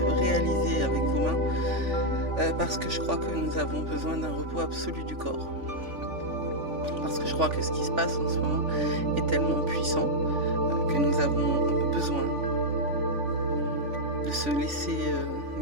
réalisés avec vos mains, parce que je crois que nous avons besoin d'un repos absolu du corps. Parce que je crois que ce qui se passe en ce moment est tellement puissant que nous avons besoin de se laisser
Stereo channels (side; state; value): left; late; 3.5 ms